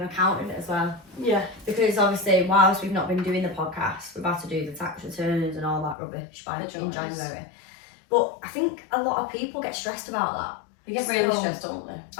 accountant as well. Yeah. Because obviously, whilst we've not been doing the podcast, we've had to do the tax returns and all that rubbish in January. But I think a lot of people get stressed about that. They get really stressed, don't they?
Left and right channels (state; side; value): drops out; right; at 6.0 s